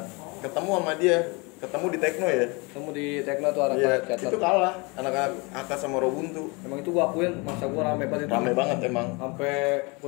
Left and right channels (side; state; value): right; quieter; 28.5 dB